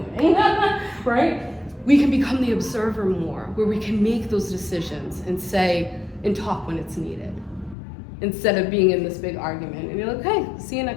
Right? We can become the observer more, where we can make those decisions and say, and talk when it's needed. Instead of being in this big argument. And you're like, okay, see you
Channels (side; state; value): right; drops out; at 7.8 s